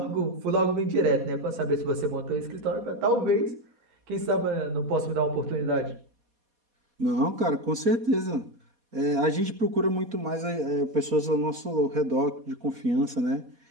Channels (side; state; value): left; late; 4.2 ms